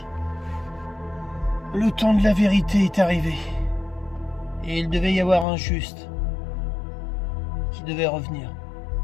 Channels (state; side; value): drops out; right; at 5.5 s